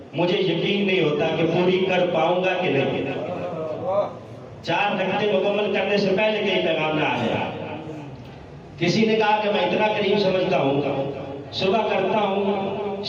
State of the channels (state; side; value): identical; both; correlation 1.00